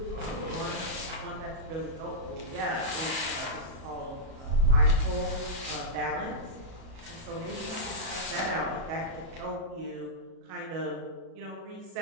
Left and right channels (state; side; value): late; left; 37 ms